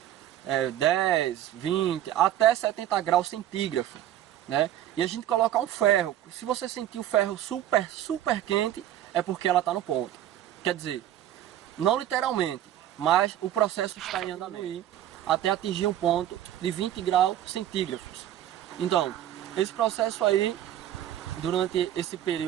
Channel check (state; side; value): quieter; left; 12.0 dB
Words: 10, 20, até 70 graus centígrados, né? E a gente coloca um ferro. Se você sentir o ferro super quente, é porque ela está no ponto. Quer dizer, não literalmente, mas o processo está em andamento até atingir um ponto de 20 graus centígrados. Então, esse processo aí, durante esse